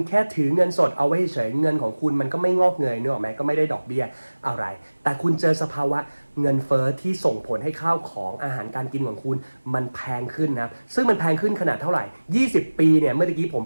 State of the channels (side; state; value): both; inverted; correlation -1.00